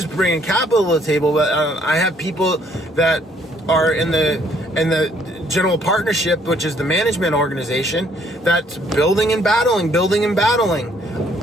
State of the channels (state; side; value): normal; both; correlation 0.65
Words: bringing capital to the table. But I have people that are in the general partnership, which is the management organization, that's building and battling,